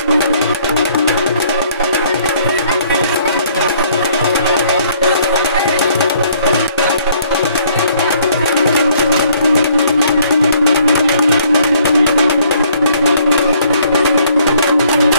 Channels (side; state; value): both; inverted; correlation -0.63